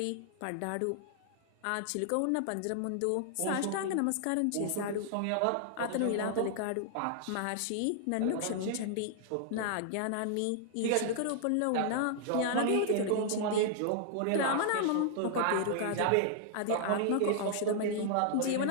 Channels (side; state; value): both; different; correlation -0.01